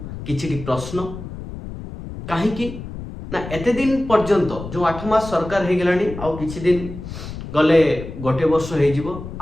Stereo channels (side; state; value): left; noise; rumble, 10 dB below the sound